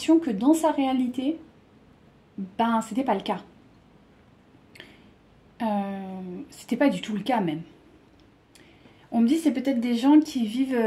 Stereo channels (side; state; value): both; identical; correlation 1.00